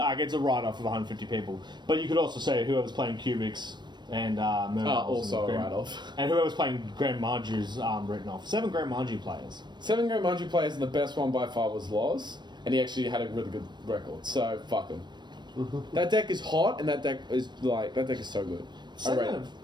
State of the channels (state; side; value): late; left; 0.22 ms